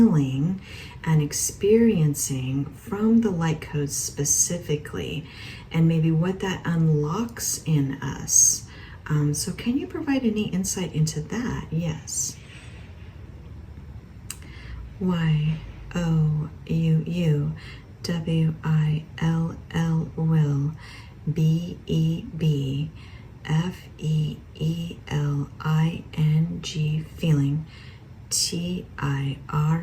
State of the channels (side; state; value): both; identical; correlation 1.00